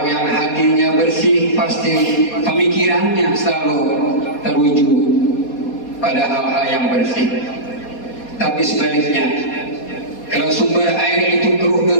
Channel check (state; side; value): late; right; 4.2 ms